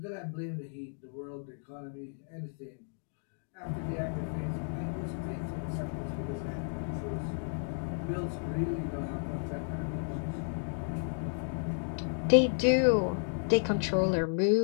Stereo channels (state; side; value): silent; right; digital silence